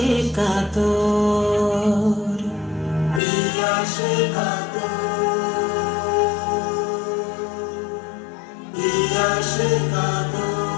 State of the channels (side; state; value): right; drops out; at 3.2 s